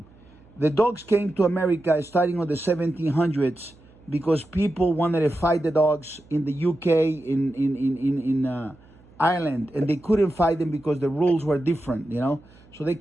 The dogs came to America starting on the 1700s because people wanted to fight the dogs in the UK, in Ireland, and they couldn't fight them because the rules were different, you know. So they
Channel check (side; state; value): right; noise; hum, 27 dB below the sound